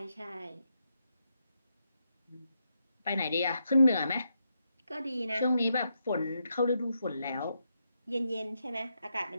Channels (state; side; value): inverted; both; correlation -0.82